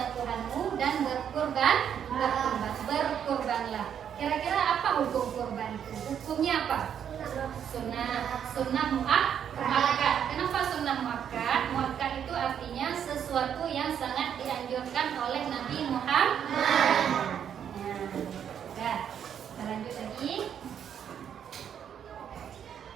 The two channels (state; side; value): quieter; left; 8.7 dB